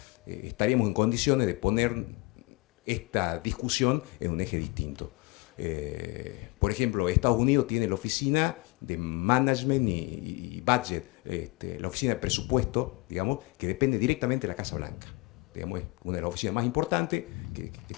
estaríamos en condiciones de poner esta discusión en un eje distinto. Por ejemplo, Estados Unidos tiene la oficina de management y budget, la oficina de presupuesto, digamos, que depende directamente de la Casa Blanca. Digamos, es una de las oficinas más importantes que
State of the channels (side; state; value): right; quieter; 25.2 dB